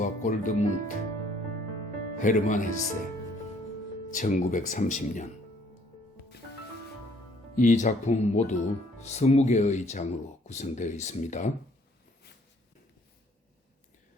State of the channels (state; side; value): normal; both; correlation 0.62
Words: 골드문트, 헤르만 헤세, 1930년. 이 작품은 모두 20개의 장으로 구성되어 있습니다.